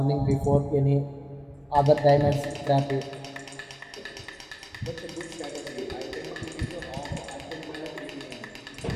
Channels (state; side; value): identical; both; correlation 1.00